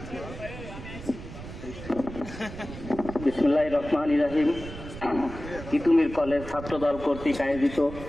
বিসমিল্লাহির রহমানির রহিম। তিতুমির কলেজ ছাত্রদল কর্তৃক আয়োজিত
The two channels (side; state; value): right; noise; rumble, 12 dB below the sound